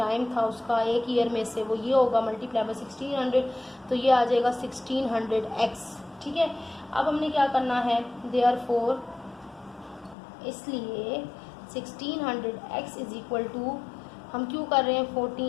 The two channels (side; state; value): right; drops out; at 10.2 s